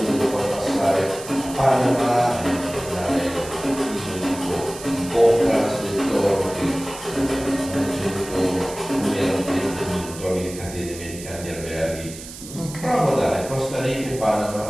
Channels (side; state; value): right; noise; hiss, 13 dB below the sound